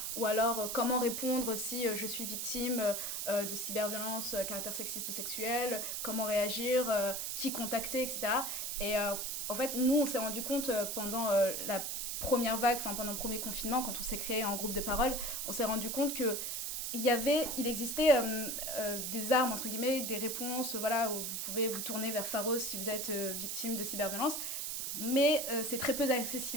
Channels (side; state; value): right; noise; hiss, 3 dB below the sound